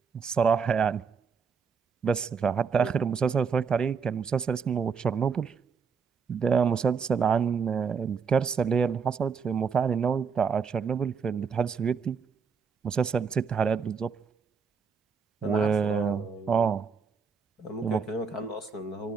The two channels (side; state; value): left; quieter; 5.9 dB